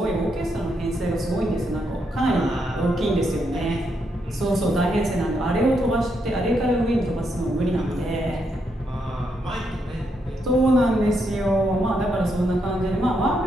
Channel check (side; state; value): both; normal; correlation 0.79